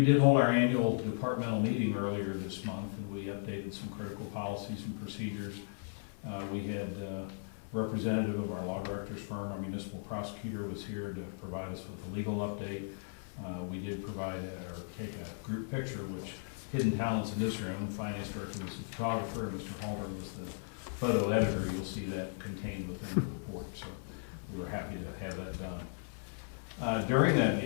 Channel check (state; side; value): silent; right; 54 dB below the other